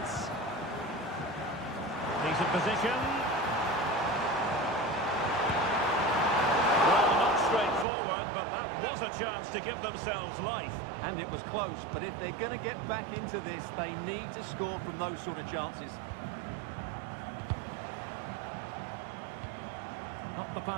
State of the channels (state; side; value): drops out; left; at 7.9 s